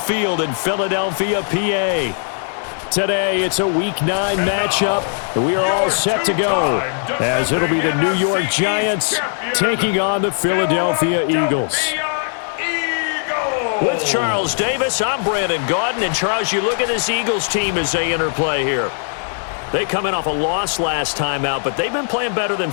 in Philadelphia, PA. Today, it's a Week 9 matchup. We are all set to go as it'll be the New York Giants taking on the Philadelphia Eagles. With Charles Davis, I'm Brandon Gaudin. And, Charles, you look at this Eagles team as they interplay here. They come in off a loss last time out, but they've been playing better than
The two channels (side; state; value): right; silent; digital silence